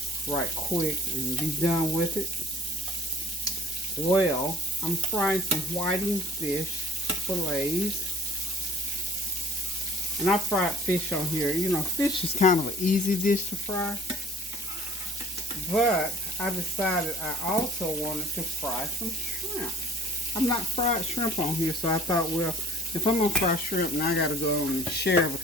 right quick and be done with it. Well, I'm frying some whiting fish fillets. And I fried fish on here. You know, fish is kind of an easy dish to fry. But I decided I also wanted to fry some shrimp. I've not fried shrimp on here, so I thought, well, if I'm going to fry shrimp, now I got to go on and share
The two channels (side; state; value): both; normal; correlation 0.52